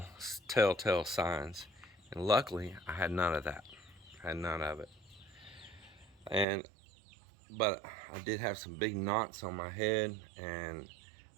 telltale signs. And luckily, I had none of that. Had none of it. But I did have some big knots on my head, and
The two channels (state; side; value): drops out; left; at 6.5 s